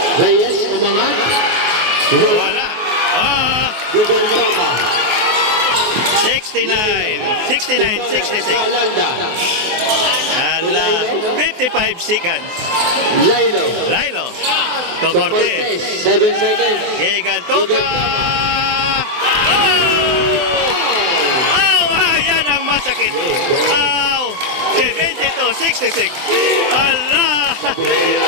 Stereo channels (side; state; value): left; late; 24 ms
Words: Reyes, umangat. Wala. Ah! Gugantoka. 69-66. Ala, 55 seconds. Lailo. To Cortez. 7 seconds. Gigantoka. Ayan ang masakit. 72-66. Ala,